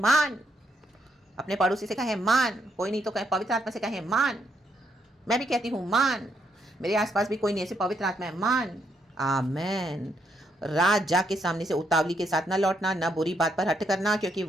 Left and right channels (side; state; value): both; normal; correlation 0.76